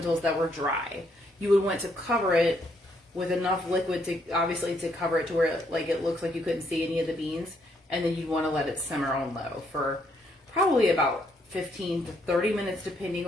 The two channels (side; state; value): both; normal; correlation 0.72